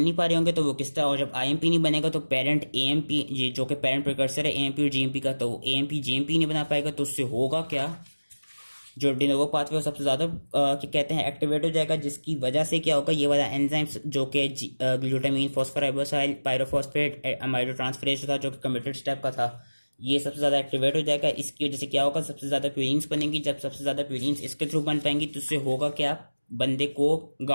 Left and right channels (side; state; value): both; inverted; correlation -1.00